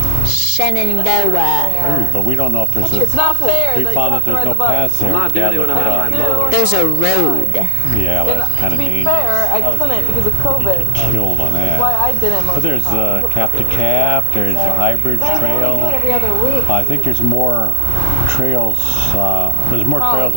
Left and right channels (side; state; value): both; different; correlation 0.00